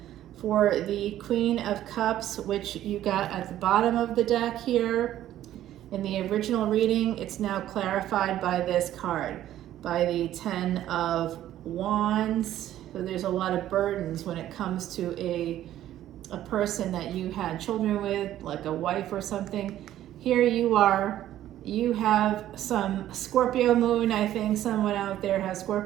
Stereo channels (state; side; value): quieter; left; 12.7 dB